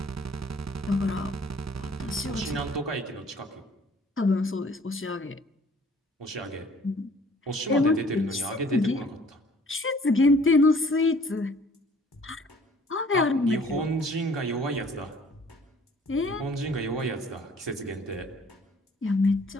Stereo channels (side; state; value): both; normal; correlation 0.55